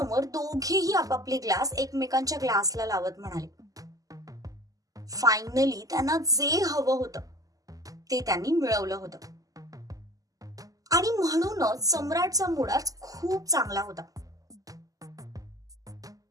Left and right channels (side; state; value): left; late; 0.17 ms